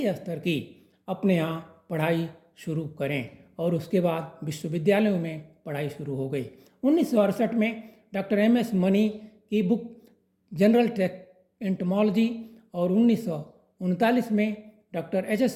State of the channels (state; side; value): identical; both; correlation 1.00